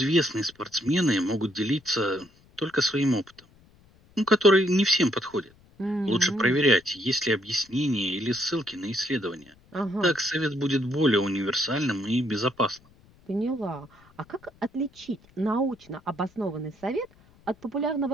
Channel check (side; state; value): left; noise; rumble, 29 dB below the sound